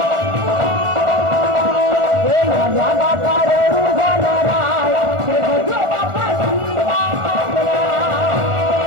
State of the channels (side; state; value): left; late; 1.4 ms